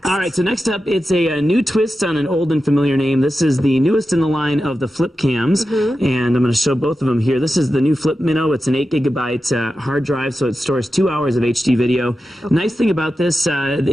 All right, so next up, it's a new twist on an old and familiar name. This is the newest in the line of the Flip Cams, and I'm going to show both of them here. This is the new Flip Minnow. It's an 8 gigabyte hard drive, so it stores 2 hours of HD video. Okay. Nice thing about this,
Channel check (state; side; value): normal; both; correlation 0.91